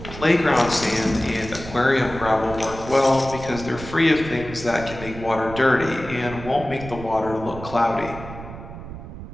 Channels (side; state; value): right; noise; rumble, 12 dB below the sound